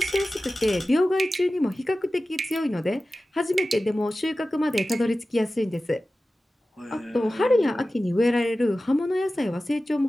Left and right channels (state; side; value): normal; both; correlation 0.95